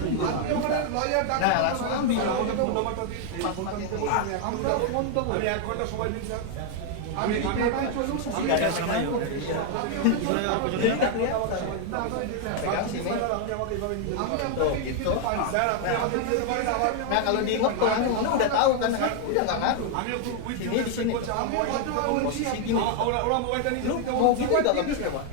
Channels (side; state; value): both; different; correlation 0.00